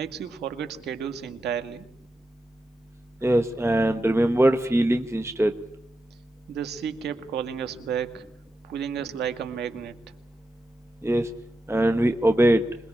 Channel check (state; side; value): normal; both; correlation 0.88